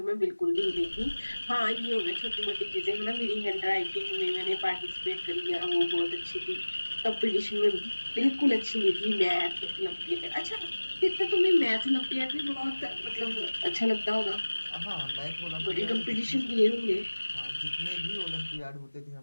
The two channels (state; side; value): inverted; both; correlation -1.00